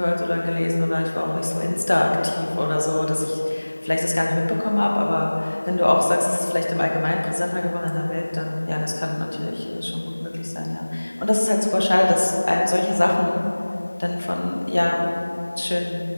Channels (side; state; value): both; inverted; correlation -1.00